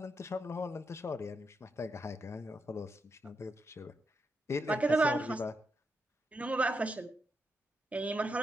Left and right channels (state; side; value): normal; both; correlation 0.83